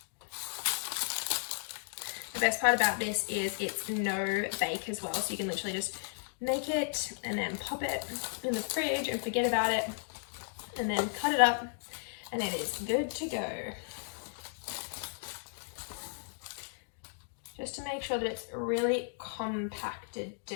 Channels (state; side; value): silent; right; digital silence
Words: The best part about this is it's no bake as well, so you can literally just make it and then pop it in the fridge and forget about it, and then cut it up and it is good to go. Just to make sure that it's really compacted